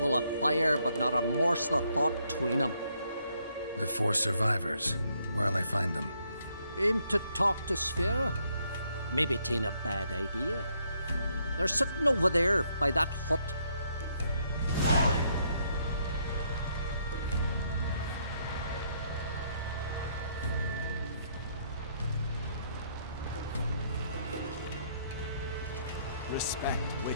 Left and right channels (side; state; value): both; inverted; correlation -0.72